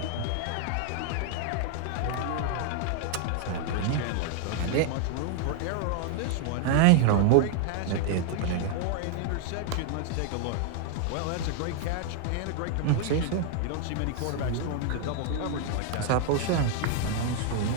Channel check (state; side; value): different; both; correlation 0.00